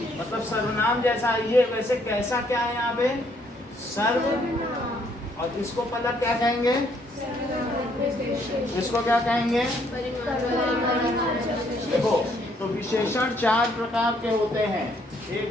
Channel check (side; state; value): both; normal; correlation 0.68